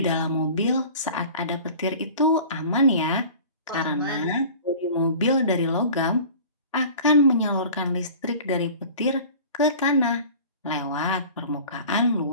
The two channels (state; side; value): inverted; both; correlation -0.41